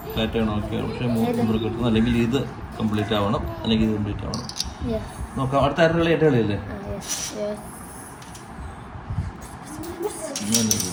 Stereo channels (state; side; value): identical; both; correlation 1.00